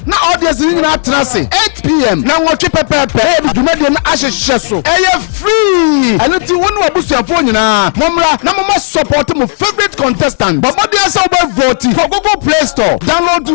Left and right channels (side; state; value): right; silent; digital silence